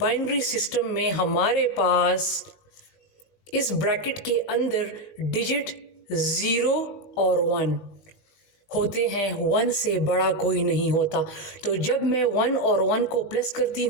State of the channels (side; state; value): right; late; 19 ms